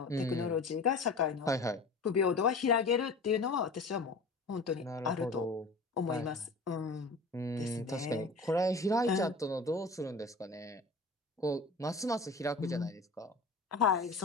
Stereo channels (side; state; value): right; quieter; 3.4 dB